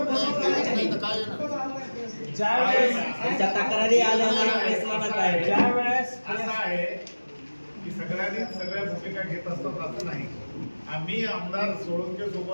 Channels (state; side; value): inverted; both; correlation -1.00